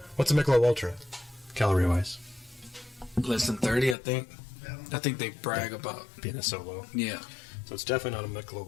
Michelob Ultra, calorie wise? Less than 30, I think. I think they brag about. Being a solo, Yeah. so it's definitely not a Michelob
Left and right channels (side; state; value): right; drops out; at 4.0 s